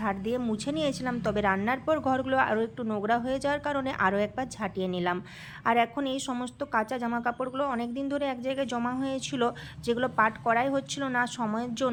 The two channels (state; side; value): identical; both; correlation 1.00